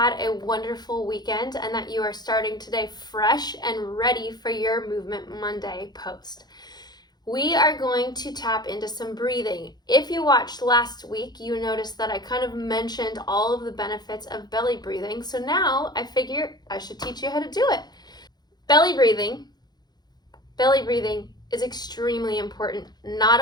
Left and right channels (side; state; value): right; late; 0.20 ms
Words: a wonderful weekend and that you are starting today fresh and ready for your Movement Monday post. We are going to tap into some breathing. If you watched last week, you noticed that I kind of mentioned all of the benefits of belly breathing. So now I figure I should teach you how to do it. Belly breathing is extremely important, not